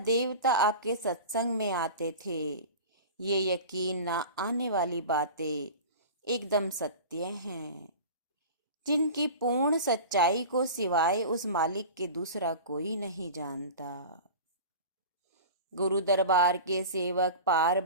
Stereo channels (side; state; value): both; inverted; correlation -0.33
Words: आपके सत्संग में आते थे। ये यकीन ना आने वाली बातें एकदम सत्य हैं, जिनकी पूर्ण सच्चाई को सिवाय उस मालिक के दूसरा कोई नहीं जानता। गुरु दरबार के सेवक पार